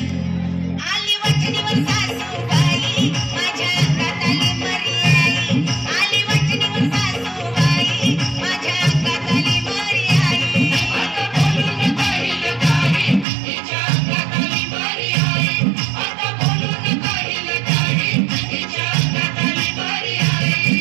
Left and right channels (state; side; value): drops out; left; at 13.2 s